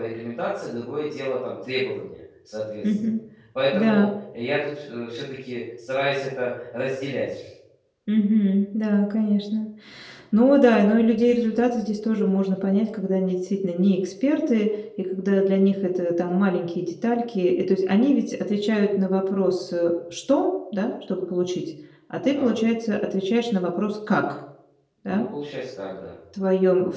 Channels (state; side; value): identical; both; correlation 1.00